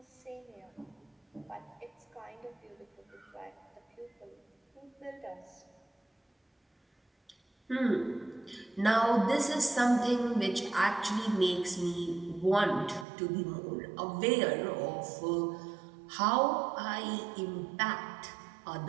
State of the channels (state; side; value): drops out; left; at 13.1 s